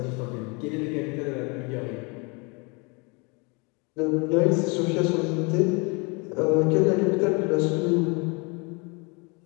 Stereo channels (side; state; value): right; quieter; 30.5 dB